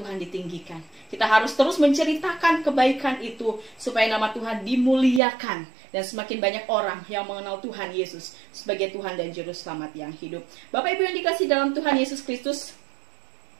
ditinggikan. Kita harus terus menceritakan kebaikan itu supaya nama Tuhan dimuliakan dan semakin banyak orang yang mengenal Tuhan Yesus sebagai Tuhan dan Juru Selamat yang hidup. Bapak Ibu yang dikasihi dalam Tuhan Yesus Kristus,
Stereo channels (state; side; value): drops out; left; at 5.2 s